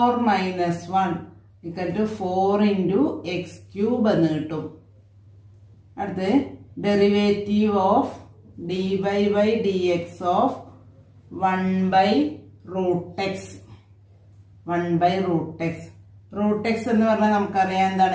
ഈക്വൽ ടു 4 × x³ എന്ന് കിട്ടും. അടുത്ത് derivative of dy/dx of 1/√x. 1/√x. √x എന്ന് പറഞ്ഞാൽ നമുക്കറിയാം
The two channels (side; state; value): both; identical; correlation 1.00